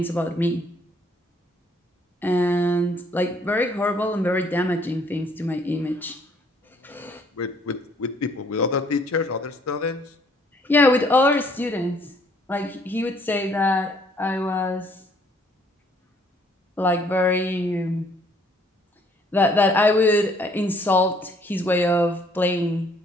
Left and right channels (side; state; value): both; normal; correlation 0.63